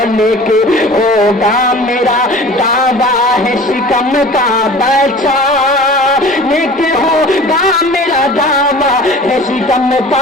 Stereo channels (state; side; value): normal; both; correlation 0.42